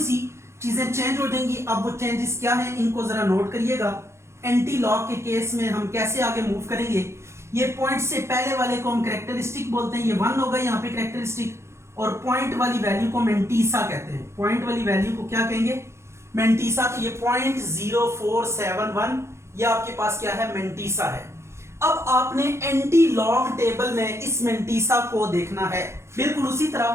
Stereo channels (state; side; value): late; left; 0.13 ms